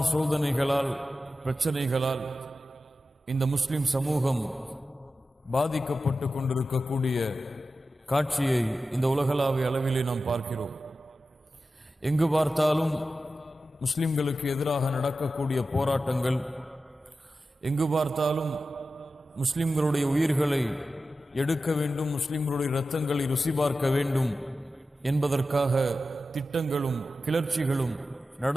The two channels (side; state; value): both; normal; correlation 0.93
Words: சோதனைகளால், பிரச்சனைகளால் இந்த முஸ்லிம் சமூகம் பாதிக்கப்பட்டு கொண்டிருக்கக்கூடிய காட்சியை இந்த உலகளாவிய அளவிலே நாம் பார்க்கிறோம். எங்கு பார்த்தாலும் முஸ்லிம்களுக்கு எதிராக நடக்கக்கூடிய போராட்டங்கள், எங்கு பார்த்தாலும் முஸ்லிம்களுடைய உயிர்களை எடுக்க வேண்டும், முஸ்லிம்களுடைய இரத்தங்களை ருசி பார்க்க வேண்டும் என்பதற்காக திட்டங்களும் கிளர்ச்சிகளும்